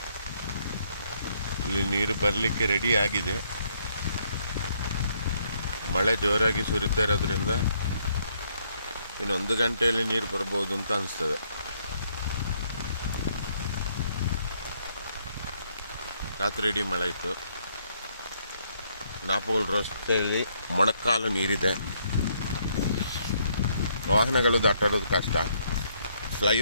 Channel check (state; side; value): inverted; both; correlation -0.70